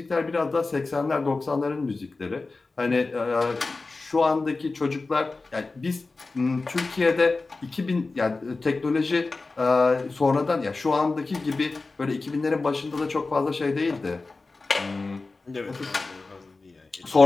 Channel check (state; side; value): quieter; right; 3.6 dB